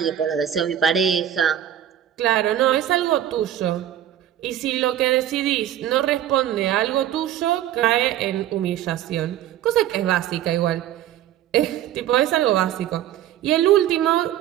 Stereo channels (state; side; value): quieter; left; 11.5 dB